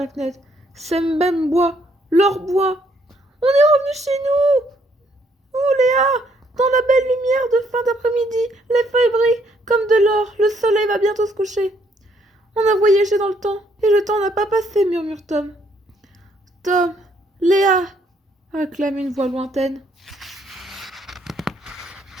fenêtre. Sembem boit. Leur boit. On est revenu chez nous. Oh Léa, dans la belle lumière de fin d'après-midi, les feuilles brillent comme de l'or. Le soleil va bientôt se coucher. On a voyagé dans le temps, et le temps n'a pas passé, murmure Tom. Tom, Léa, acclame une voix lointaine.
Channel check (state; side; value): normal; both; correlation 0.69